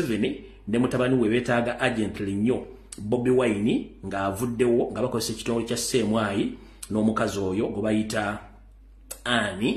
ne mutabani we beetaaga agently nnyo Bobi Wine ng'avuddewo nga bakozesa ekitongole kya CMY n'omukazi oyo gwe bayita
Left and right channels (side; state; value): both; identical; correlation 1.00